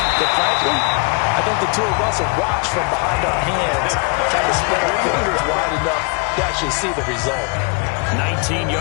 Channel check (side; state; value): right; quieter; 31.4 dB